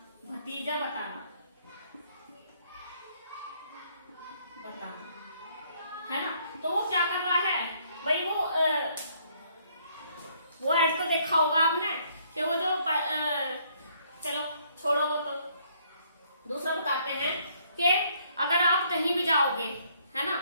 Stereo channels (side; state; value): both; inverted; correlation -0.66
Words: भतीजा बताना, है ना। तो वो क्या कर रहा है भाई, वो ऐड तो देखा होगा आपने कि वो जो चलो छोड़ो, वो तो दूसरा बताते हैं कि अगर आप कहीं भी जाओगे, है ना,